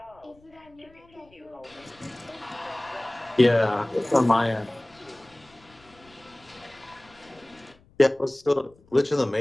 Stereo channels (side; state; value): left; noise; rumble, 29 dB below the sound